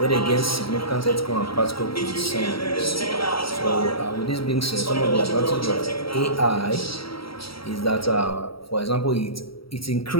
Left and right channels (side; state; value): right; late; 0.75 ms